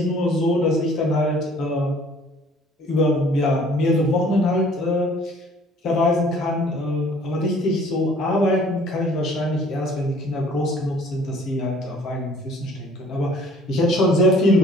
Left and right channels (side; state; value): both; normal; correlation 0.55